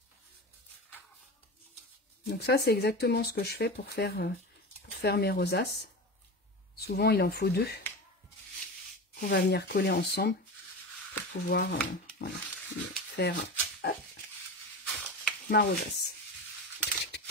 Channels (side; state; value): both; normal; correlation 0.26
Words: Donc ça, c'est exactement ce que je fais pour faire mes rosaces. Souvent, il en faut 2. qu'on va venir coller ensemble pour pouvoir voilà, faire ma rosace.